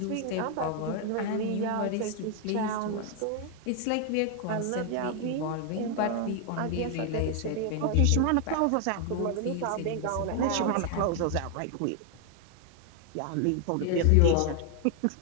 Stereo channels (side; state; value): both; different; correlation 0.00